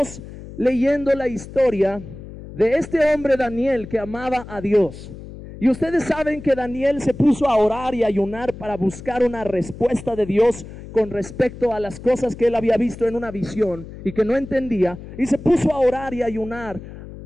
leyendo la historia de este hombre Daniel que amaba a Dios. Y ustedes saben que Daniel se puso a orar y ayunar para buscar una respuesta de Dios con respecto a las cosas que él había visto en una visión y que no entendía. Y se puso a orar y ayunar,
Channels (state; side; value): noise; left; hum, 14 dB below the sound